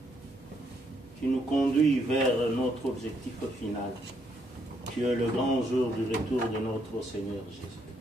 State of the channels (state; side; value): normal; both; correlation 0.73